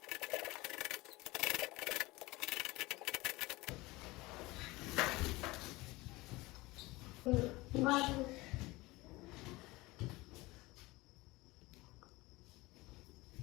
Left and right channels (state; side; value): quieter; right; 21.3 dB